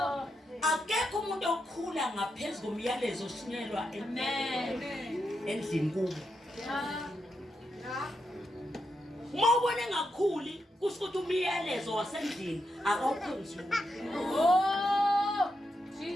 Akekho umuntu okhula ngaphezulu komyalezo oshunyelwa endlini kubo. Uma ubone ngakhuli kusho ukuthi umyalezo wasendlini akawukhonzile. Oh,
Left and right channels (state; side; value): normal; both; correlation 0.84